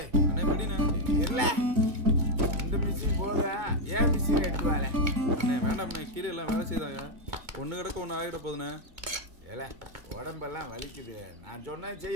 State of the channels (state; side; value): late; left; 2.2 ms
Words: அண்ணே படிண்ணே. இல்ல இந்த மிஷின் போதும், ஏன் மிஷின் எடுத்து வாழ? அண்ணே வேண்டாம்ண்ணே, கீழே எல்லாம் வேலை செய்தாங்க. ஒன்று கிடக்க ஒன்று ஆகிட போதுண்ணே. ஏல உடம்பெல்லாம் வலிக்குது. நான் சொன்னேன்